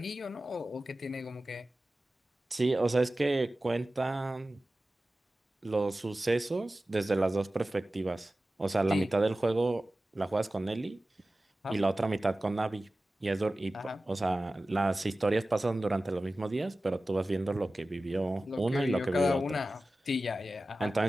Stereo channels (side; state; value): both; normal; correlation 0.96